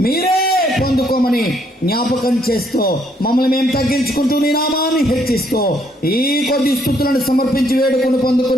మీరే పొందుకోమని జ్ఞాపకం చేస్తూ మమ్మల్ని మేము తగ్గించుకుంటూ నీ నామాన్ని హెచ్చిస్తూ ఈ కొద్ది స్తుతులను సమర్పించి వేడుకొని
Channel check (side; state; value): both; normal; correlation 0.69